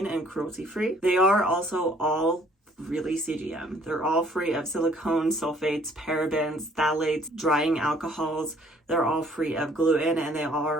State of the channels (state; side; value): normal; both; correlation 0.60